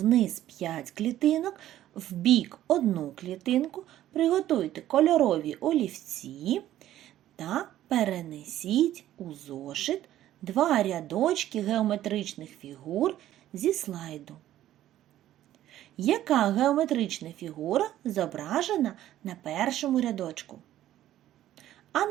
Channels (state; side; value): quieter; left; 13.1 dB